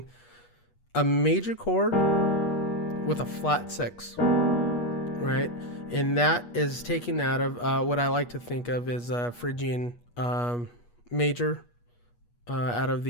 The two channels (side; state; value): right; late; 8.3 ms